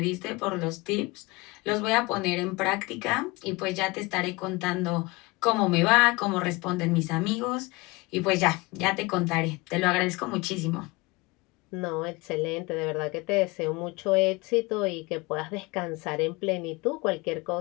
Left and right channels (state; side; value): quieter; right; 24.0 dB